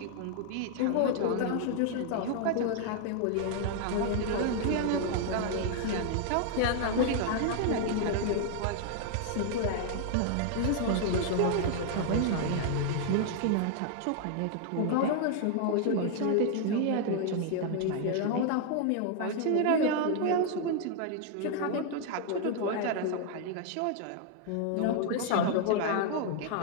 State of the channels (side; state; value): both; different; correlation 0.00